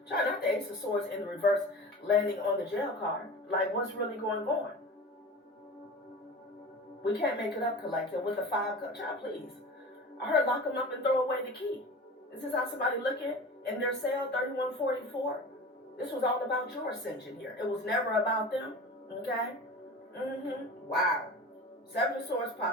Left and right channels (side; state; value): both; normal; correlation 0.35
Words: Try not the Ace of Swords in the reverse, landing on the jail card. Like, what's really going on? We can't make it up, collective, with the 5 cup. Child, please. I heard lock them up and throw away the key. Is this how somebody looking in their cell, 3144? This was all about your ascension here. It was never about them, okay? Wow. 7 of Swords